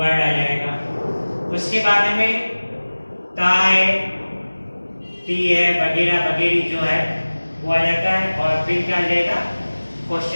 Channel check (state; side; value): inverted; both; correlation -1.00